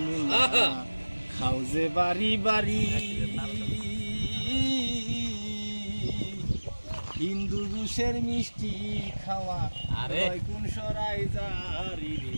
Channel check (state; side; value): inverted; both; correlation -1.00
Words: মোল্লা খাও যে বাড়ি বাড়ি হিন্দু ঘুষের মিষ্টি খাওয়া কোন সরাই জারি